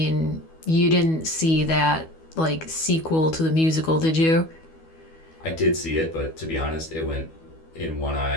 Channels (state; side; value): late; right; 12 ms